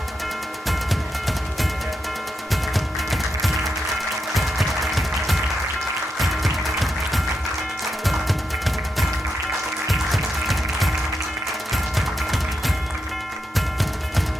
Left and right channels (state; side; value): normal; both; correlation 0.85